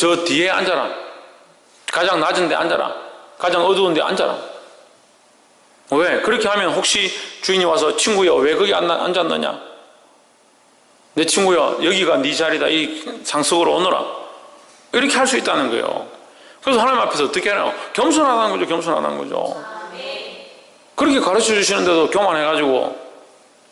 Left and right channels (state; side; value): identical; both; correlation 1.00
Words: 뒤에 앉아라. 가장 낮은 데 앉아라. 가장 어두운 데 앉아라. 왜? 그렇게 하면 혹시 주인이 와서 친구야 왜 거기 앉았느냐? 내 친구야 여기가 네 자리다. 이 상석으로 오너라. 이렇게 할 수 있다는 거예요. 그래서 하나님 앞에서 어떻게 하나요? 겸손하다는 거죠. 겸손하다는 거죠. 그렇게 가르쳐 주시는데도 교만해가지고